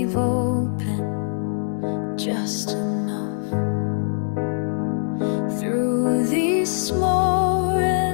open just enough. Through these small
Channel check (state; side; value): silent; right; digital silence